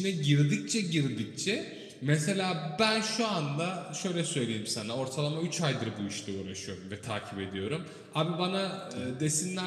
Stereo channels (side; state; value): both; identical; correlation 1.00